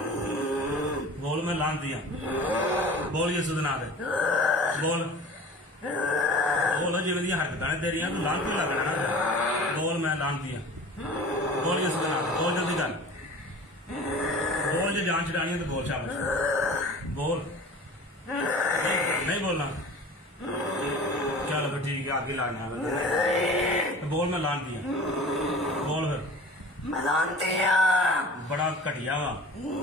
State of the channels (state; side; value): normal; both; correlation 0.40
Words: बोल मैं लानती हाँ बोल यीशु दे नाम दे बोल बोल जिवें दी हरकतां ने तेरियां तू लानती लगना ना बोल मैं लानती हाँ बोल यीशु दे नाम दे बोल जल्दी कर बोल जो जान छड़ानी है तो बोल शाबाश बोल नहीं बोलना चलो फिर ठीक है आगे लाना है बोल मैं लानती हूँ बोल फिर मैं जानती हूँ बड़ा घटिया वा